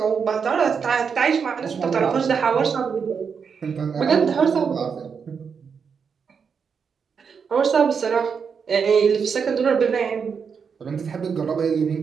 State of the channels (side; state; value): left; quieter; 6.2 dB